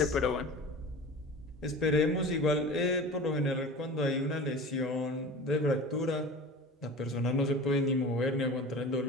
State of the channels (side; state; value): both; normal; correlation 0.36